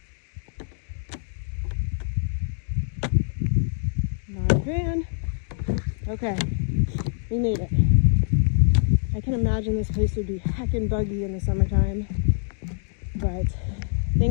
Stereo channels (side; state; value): right; silent; digital silence